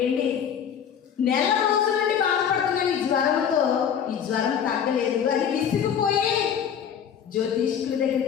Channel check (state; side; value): quieter; right; 8.2 dB